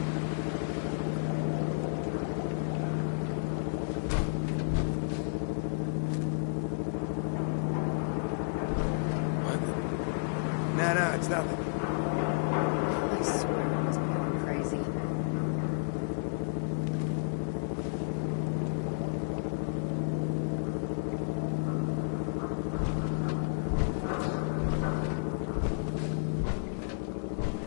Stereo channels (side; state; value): right; silent; digital silence